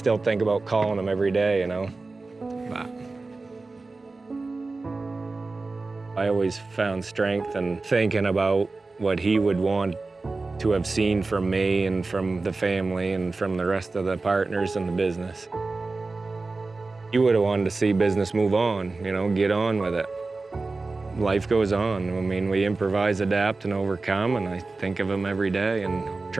think about calling him every day, But I always found strength in thinking about what he would want to have seen from me and from the family and from the rest of the partners in the business. He would have wanted to see business move on, get on with it. Life goes on. I mean, we improvise, adapt, and overcome, and I think of him every day and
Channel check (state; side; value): quieter; left; 3.6 dB